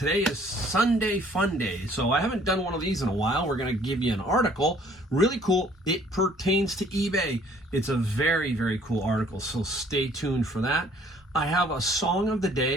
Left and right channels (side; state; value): both; normal; correlation 0.58